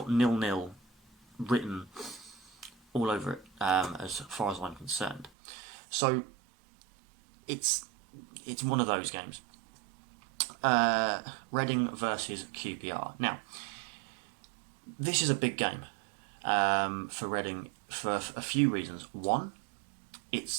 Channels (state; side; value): drops out; left; at 5.3 s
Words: 0-0 written all over it, as far as I'm concerned. So it's one of those games. Reading versus QPR. Now, this is a big game for Reading for a few reasons. One,